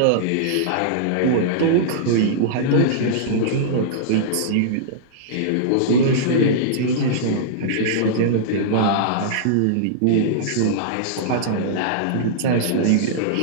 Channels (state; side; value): different; both; correlation -0.02